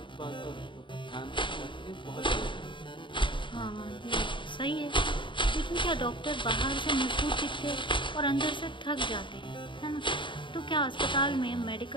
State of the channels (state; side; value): late; right; 0.24 ms